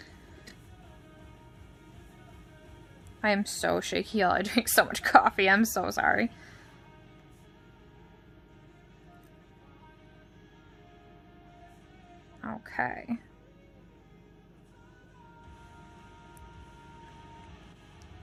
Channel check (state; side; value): identical; both; correlation 1.00